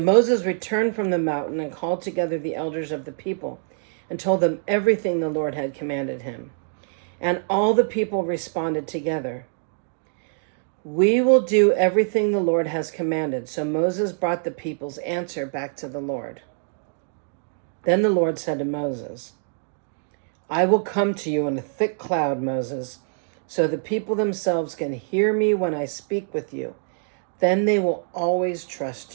returned from the mountain and called together the elders of the people and told them everything the Lord had commanded him. And all the people responded together, "We will do everything the Lord has commanded." So Moses brought the people's answer back to the Lord. Then the Lord said to Moses, "I will come to you in a thick cloud, Moses, so the people themselves can hear me when I speak with you. Then they will always trust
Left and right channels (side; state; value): left; silent; digital silence